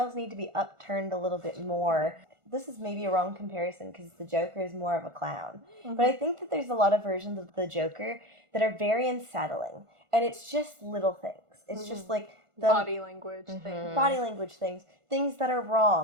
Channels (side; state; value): left; late; 1.5 ms